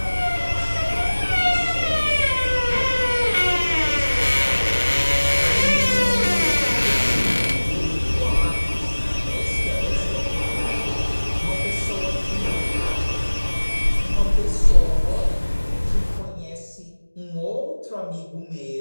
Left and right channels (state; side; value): inverted; both; correlation -1.00